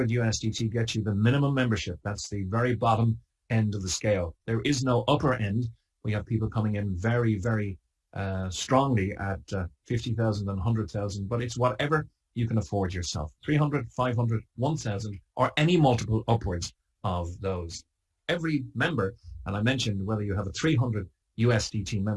USDT gets you the minimum membership. That's the very bottom end of the scale. There is no upper end. We have people coming in very, very strongly at 50,000 and 100,000, but it's whatever you can afford yourself. 300, 500, 1,000, or any multiple upwards of those. Every member, and I mentioned whether you have a 300 USDT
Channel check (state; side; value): identical; both; correlation 1.00